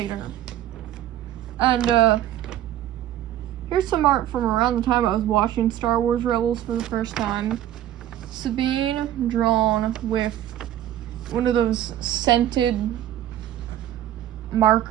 And here's some art from around the time I was watching Star Wars Rebels for the first time. Sabine drawn with one of those scented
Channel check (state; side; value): quieter; left; 12.3 dB